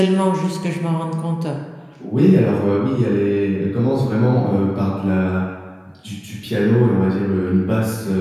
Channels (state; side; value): identical; both; correlation 1.00